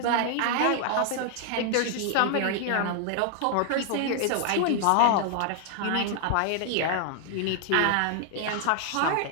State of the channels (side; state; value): both; different; correlation 0.00